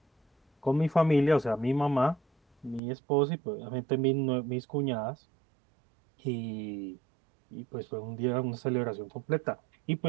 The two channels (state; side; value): drops out; left; at 2.8 s